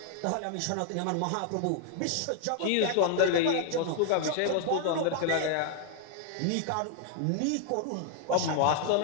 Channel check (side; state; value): both; different; correlation 0.00